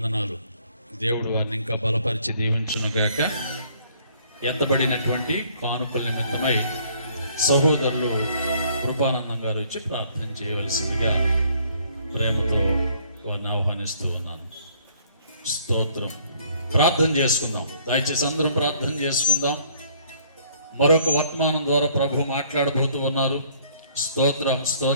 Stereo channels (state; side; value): inverted; both; correlation -0.61